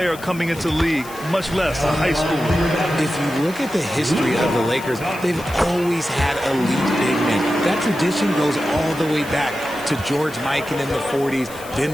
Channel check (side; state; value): left; noise; hiss, 17 dB below the sound